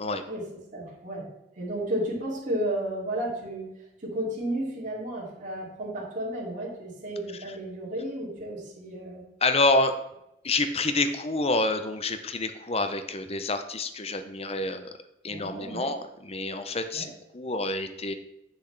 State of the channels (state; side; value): normal; both; correlation 0.16